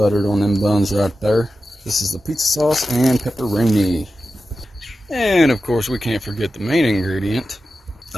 on them buns right there. This is the pizza sauce and pepperoni. And of course, we can't forget the main ingredient,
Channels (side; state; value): both; normal; correlation 0.92